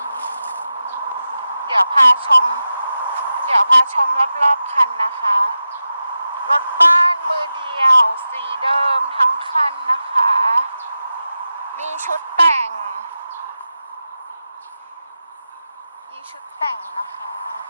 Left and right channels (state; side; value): inverted; both; correlation -0.92